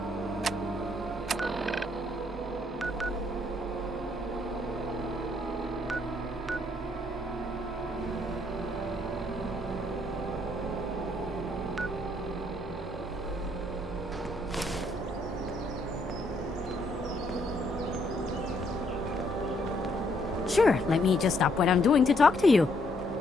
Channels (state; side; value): normal; both; correlation 0.70